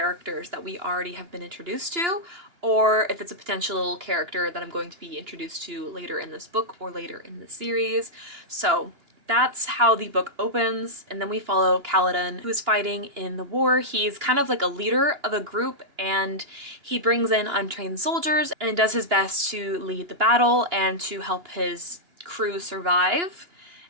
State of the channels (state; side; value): late; left; 2.9 ms